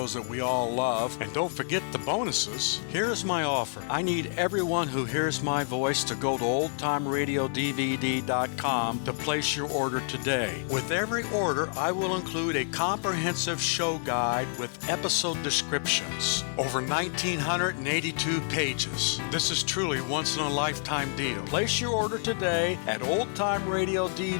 that we all love. And don't forget the bonuses. Here's my offer. I need everyone who hears my voice to go to oldtimeradiodvd.com to place your order today. With every order, I will include a comprehensive show guide with episode descriptions. Over 1,982 pages. This is truly once-in-a-lifetime deal. Place your order today at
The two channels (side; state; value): right; silent; digital silence